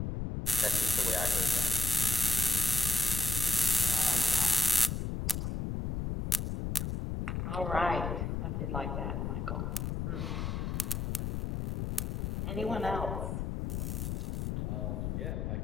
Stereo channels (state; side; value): noise; left; rumble, 2 dB below the sound